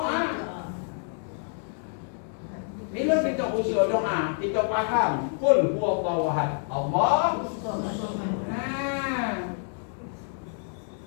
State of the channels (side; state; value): right; silent; 58 dB below the other